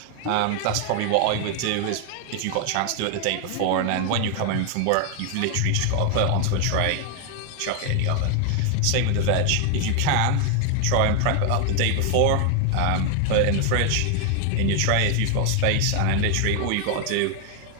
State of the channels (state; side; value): different; both; correlation 0.01